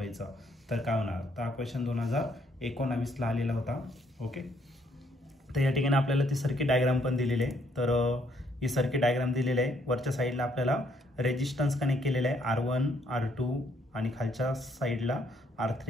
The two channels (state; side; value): normal; both; correlation 0.69